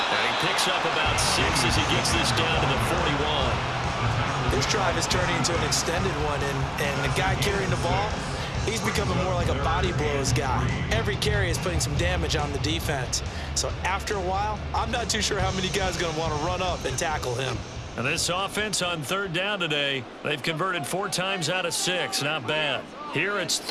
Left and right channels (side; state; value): both; identical; correlation 1.00